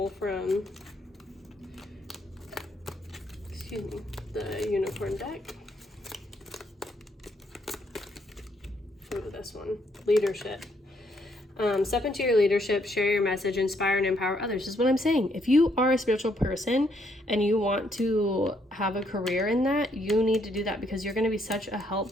from, the unicorn deck. Go to this one, leadership. Step into your leadership, share your message, inspire and empower others. This is what I'm saying. If you are a spiritual person and you want to have a career in that, you need to do that because you're going to be such a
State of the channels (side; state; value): both; normal; correlation 0.72